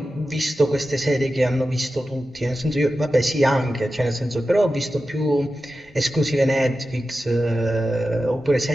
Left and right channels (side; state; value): both; normal; correlation 0.92